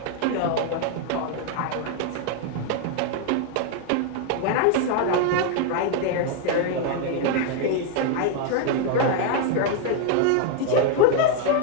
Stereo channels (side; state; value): both; different; correlation 0.00